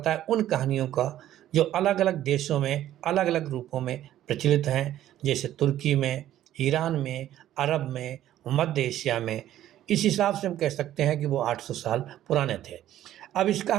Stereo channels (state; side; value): quieter; left; 12.6 dB